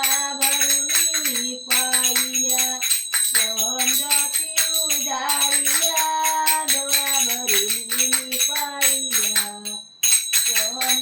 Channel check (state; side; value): identical; both; correlation 1.00